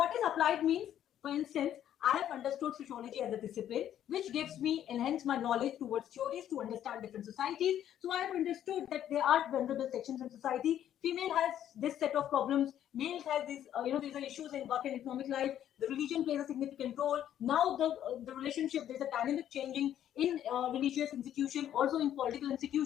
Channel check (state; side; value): quieter; right; 10.8 dB